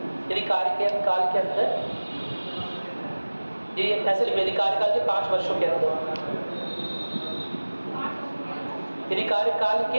यदि कार्यकाल के अंदर, ये ऐसे लिखिए, यदि कार्यकाल के 5 वर्षों के अंदर, यदि कार्यकाल के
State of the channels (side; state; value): both; inverted; correlation -1.00